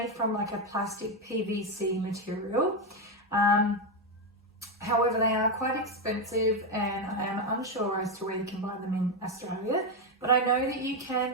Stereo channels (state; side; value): normal; both; correlation 0.07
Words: from like a plastic PVC material. However, they are quite expensive, and I am unsure as to where you can buy them in Australia. But I know that you can